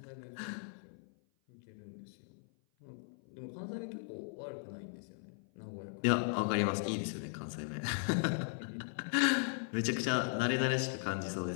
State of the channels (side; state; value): right; silent; 53 dB below the other